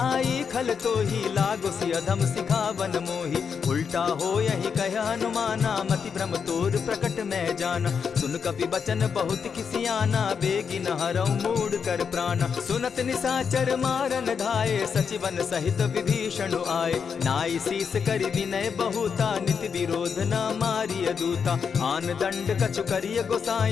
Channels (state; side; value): quieter; right; 6.4 dB